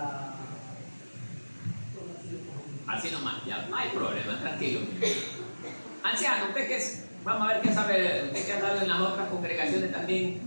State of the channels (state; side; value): inverted; both; correlation -1.00